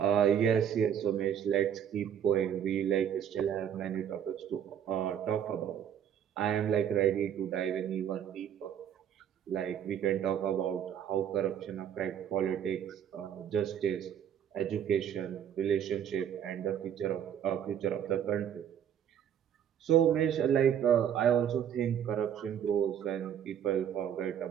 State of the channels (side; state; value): left; quieter; 9.2 dB